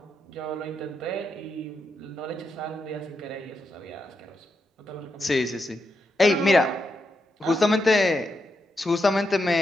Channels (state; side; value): normal; both; correlation 0.84